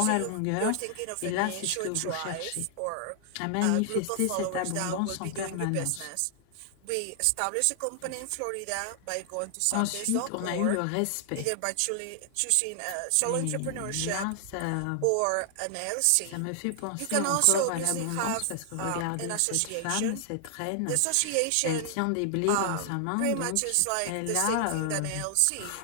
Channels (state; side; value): different; both; correlation 0.00